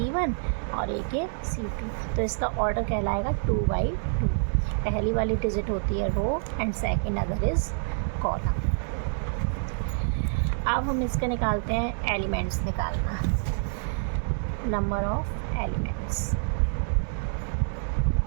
और एक ये C2। तो इसका ऑर्डर कहलाएगा 2/2। पहली वाली डिजिट होती है row and second other is column. अब हम इसका निकालते हैं एलिमेंट्स निकालना, नंबर ऑफ एलिमेंट्स।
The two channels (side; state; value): left; silent; digital silence